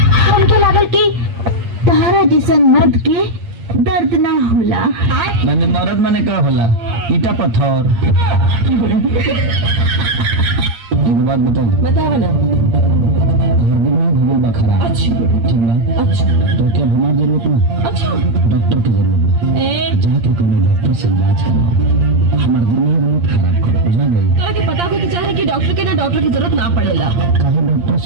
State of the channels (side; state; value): left; late; 8.6 ms